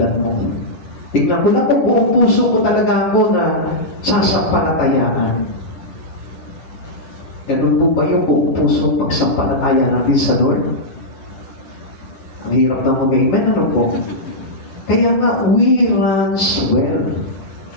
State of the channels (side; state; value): right; late; 11 ms